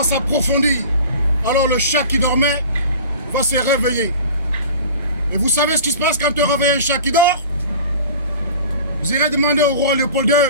s'approfondir, alors le chat qui dormait va se réveiller. Et vous savez ce qui se passe quand on réveille un chat qui dort? Vous irez demander au roi Léopold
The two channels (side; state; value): both; inverted; correlation -0.40